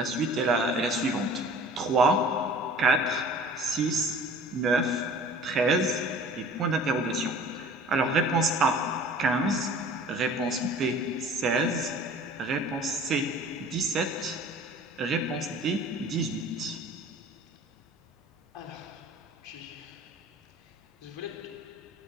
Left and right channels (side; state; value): both; normal; correlation 0.46